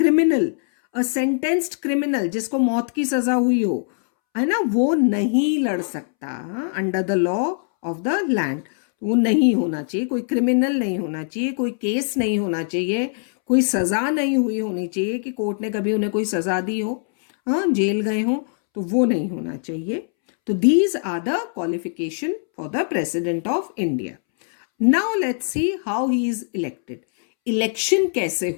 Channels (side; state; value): right; silent; 64 dB below the other